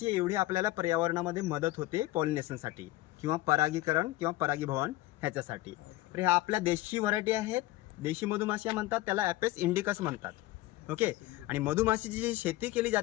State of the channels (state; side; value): quieter; right; 17.3 dB